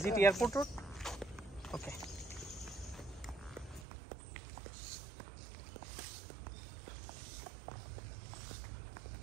it airport road? Okay.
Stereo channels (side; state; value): left; drops out; at 3.9 s